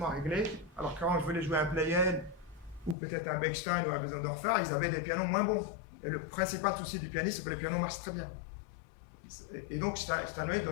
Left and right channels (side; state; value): right; drops out; at 3.0 s